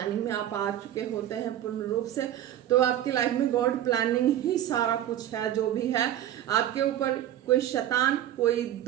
में आप आ चुके होते हैं पूर्ण रूप से, तो आपकी लाइफ में गॉड प्लानिंग ही सारा कुछ है। जो भी है आपके ऊपर कोई शैतान, कोई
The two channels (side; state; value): left; quieter; 11.9 dB